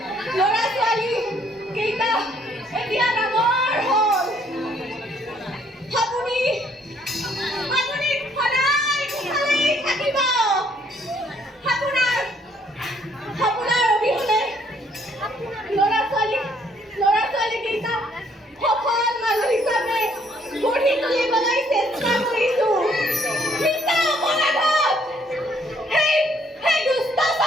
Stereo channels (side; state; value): both; normal; correlation 0.66